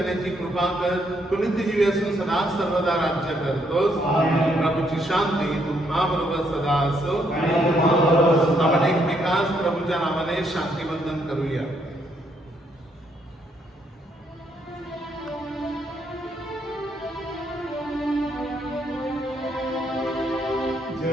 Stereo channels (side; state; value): both; normal; correlation 0.73